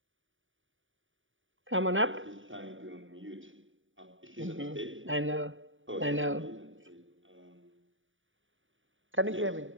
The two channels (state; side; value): late; left; 0.57 ms